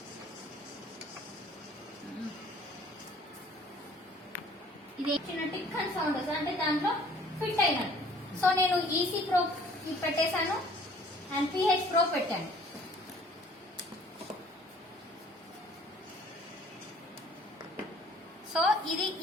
ఇది చిన్న టిక్ అని సౌండ్ వస్తుంది, అంటే దాంట్లో ఫిట్ అయినట్టు. సో నేను ఈసీ ప్రోబ్ పెట్టేశాను అండ్ పిహెచ్ ప్రోబ్ పెట్టాను. సో ఇది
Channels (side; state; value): both; normal; correlation 0.54